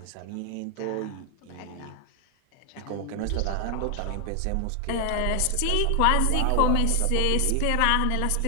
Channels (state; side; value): different; both; correlation 0.00